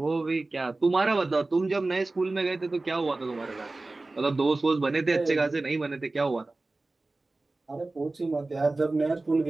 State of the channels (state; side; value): quieter; left; 3.2 dB